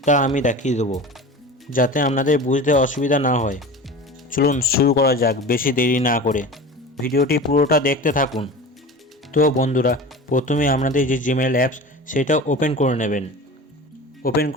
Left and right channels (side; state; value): both; normal; correlation 0.34